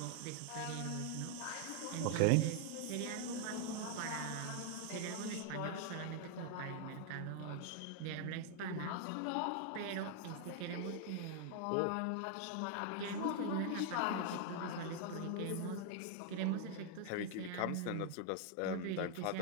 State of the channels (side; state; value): both; different; correlation 0.00